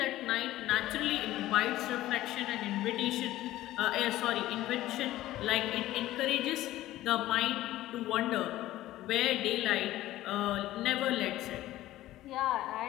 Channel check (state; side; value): quieter; right; 15.2 dB